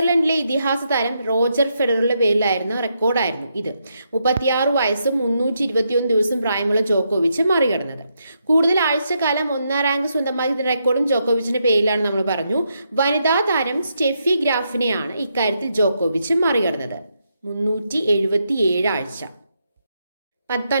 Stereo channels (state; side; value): inverted; both; correlation -0.80